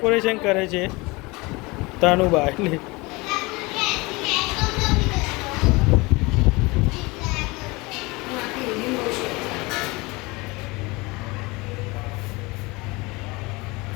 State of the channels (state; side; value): quieter; right; 24.3 dB